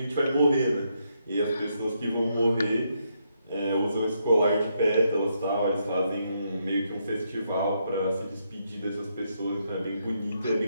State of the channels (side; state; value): both; inverted; correlation -0.78